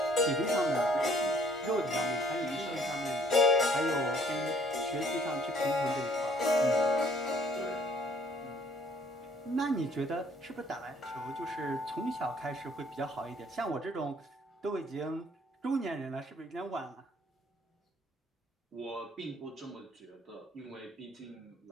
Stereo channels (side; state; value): both; normal; correlation 0.60